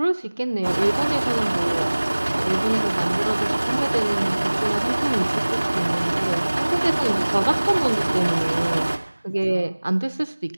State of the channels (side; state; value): both; inverted; correlation -1.00